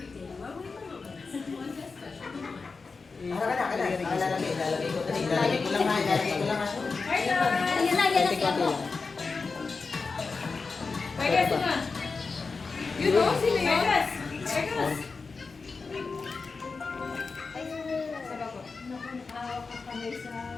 Ilalagay ko. Ilalagay ko lang ha. Yan lang, yan lang. Pwede sino? You know sino yun? Vegas.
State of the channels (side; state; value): right; quieter; 4.4 dB